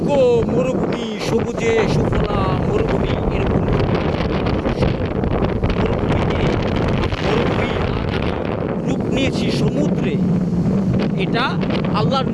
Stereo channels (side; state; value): both; identical; correlation 1.00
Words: মরুভূমি, সবুজে সুফলা মরুভূমি, এরকম মরুভূমি রূপ নিয়েছি সমুদ্রে। এটা আল্লাহর